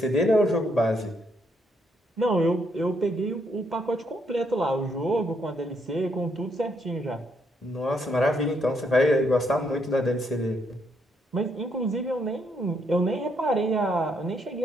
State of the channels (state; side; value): normal; both; correlation 0.74